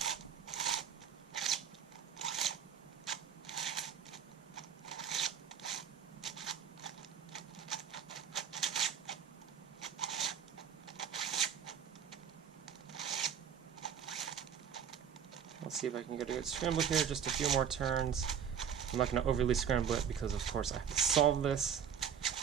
Let's see if I can get a good scramble here, just a few more turns. I'm not going to overly scramble it because of course I have to solve this.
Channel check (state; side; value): quieter; left; 8.0 dB